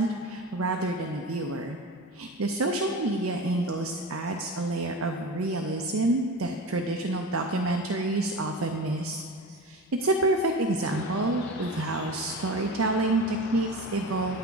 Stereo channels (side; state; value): both; normal; correlation 0.31